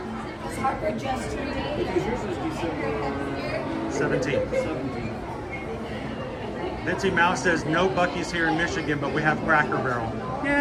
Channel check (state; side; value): identical; both; correlation 1.00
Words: Is Harper just turned 8? Because yours was December 17. Mitzi Mouse says no Buc-ee's here in Michigan, but we have Cracker Barrel.